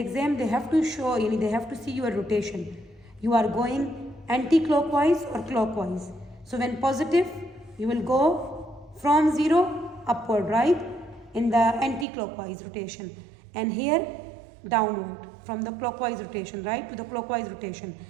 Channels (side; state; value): left; drops out; at 12.1 s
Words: they have to show, they have to see your rotation. You are going anti-clockwise or clockwise. So when positive, you will go from 0 upward, right? In the anti-clockwise rotation. And here downward from the clockwise rotation, right, to the clockwise rotation.